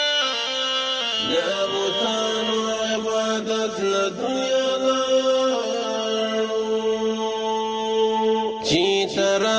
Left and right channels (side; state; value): both; identical; correlation 1.00